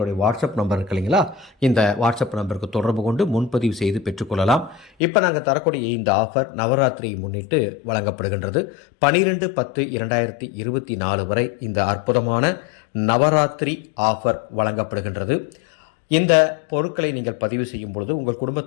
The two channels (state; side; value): drops out; right; at 4.9 s